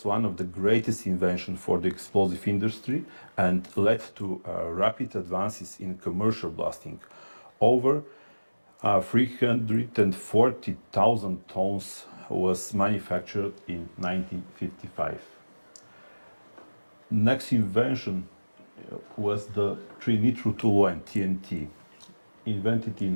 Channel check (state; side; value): inverted; both; correlation -1.00